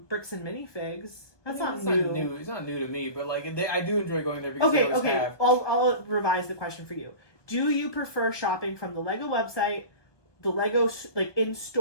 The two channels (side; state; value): right; late; 1.2 ms